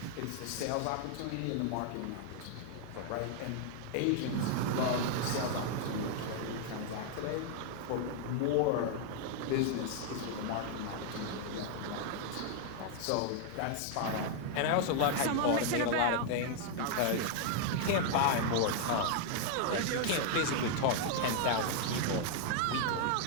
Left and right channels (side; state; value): both; different; correlation 0.00